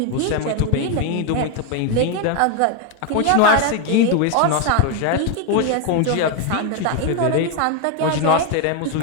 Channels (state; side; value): different; both; correlation 0.01